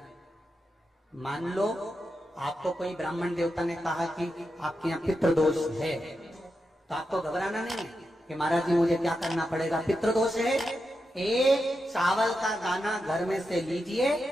मान लो आपको कोई ब्राह्मण देवता ने कहा कि आपके यहाँ पितृ दोष है, तो आपको घबराना नहीं है कि महाराज जी मुझे क्या करना पड़ेगा। पितृ दोष है, एक चावल का दाना घर में से लीजिए,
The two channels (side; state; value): both; normal; correlation 0.88